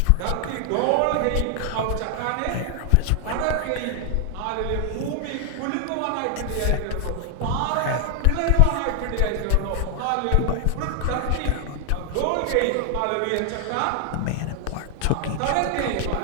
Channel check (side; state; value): both; different; correlation 0.00